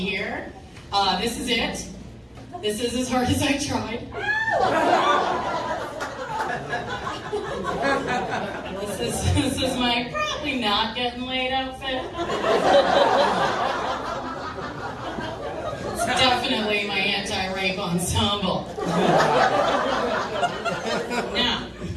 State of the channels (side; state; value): both; identical; correlation 1.00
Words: This is it. This is as hard as I tried. This is my probably not getting laid outfit. It's definitely my anti-rape ensemble. Now,